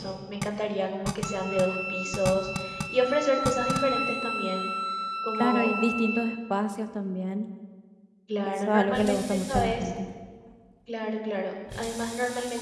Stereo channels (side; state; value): both; identical; correlation 1.00